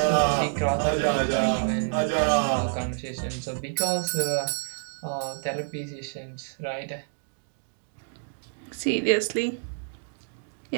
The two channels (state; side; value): silent; left; digital silence